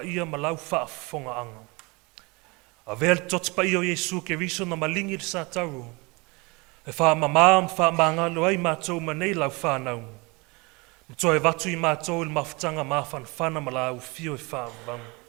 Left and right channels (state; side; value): quieter; left; 26.7 dB